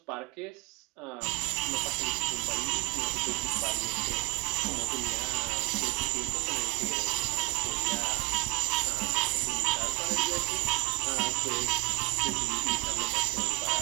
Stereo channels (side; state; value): left; quieter; 25.0 dB